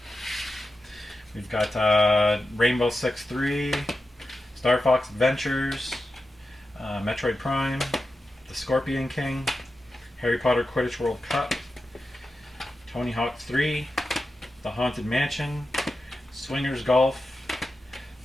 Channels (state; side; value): normal; both; correlation 0.91